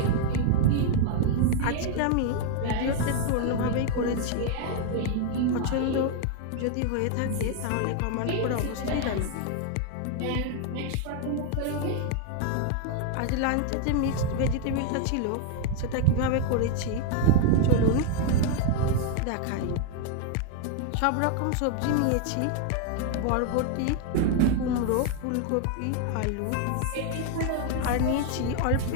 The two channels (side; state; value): both; different; correlation 0.00